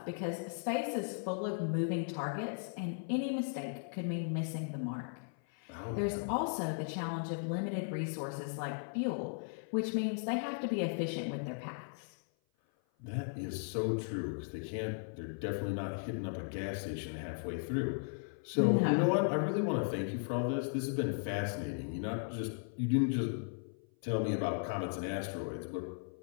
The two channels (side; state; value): right; silent; 53 dB below the other